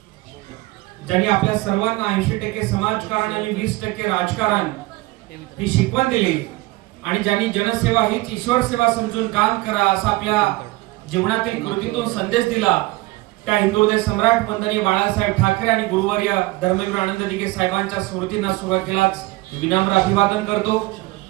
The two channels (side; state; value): left; quieter; 20.9 dB